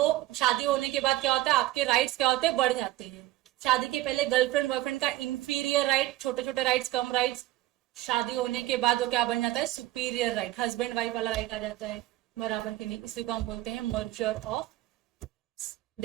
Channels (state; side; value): quieter; left; 15.7 dB